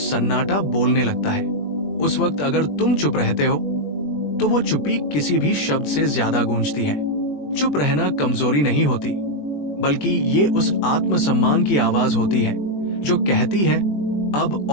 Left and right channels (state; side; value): late; right; 21 ms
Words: बोलने लगता है। उस वक्त अगर तुम चुप रहते हो तो वो चुप्पी किसी भी शब्द से ज्यादा गूंजती है। चुप रहना कमजोरी नहीं होती, बल्कि ये उस आत्मसम्मान की आवाज होती है जो कहती है अब